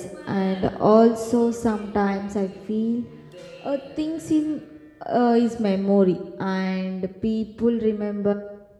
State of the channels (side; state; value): both; identical; correlation 1.00